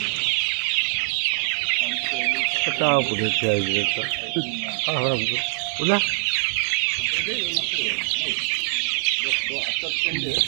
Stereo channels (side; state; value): left; silent; 63 dB below the other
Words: पुढे ठेवायचं पुन्हा